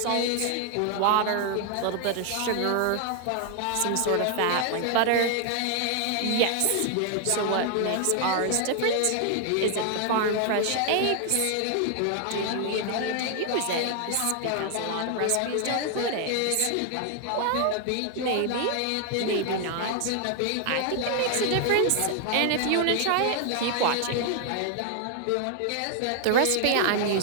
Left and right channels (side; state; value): both; different; correlation 0.00